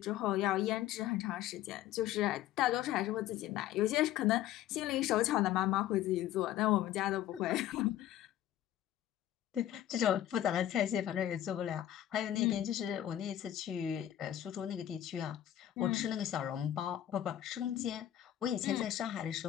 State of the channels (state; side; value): quieter; right; 12.1 dB